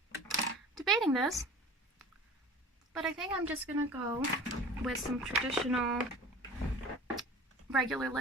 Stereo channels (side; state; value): both; normal; correlation 0.41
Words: Debating this, but I think I'm just gonna go with some traditional regular